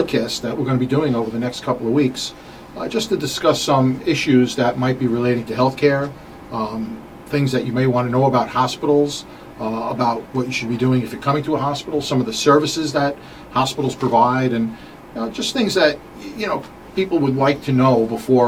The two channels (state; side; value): identical; both; correlation 1.00